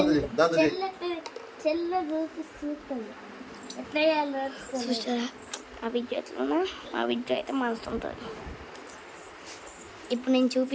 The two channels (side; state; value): both; identical; correlation 1.00